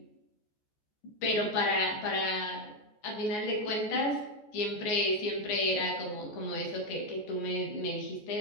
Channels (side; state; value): right; late; 14 ms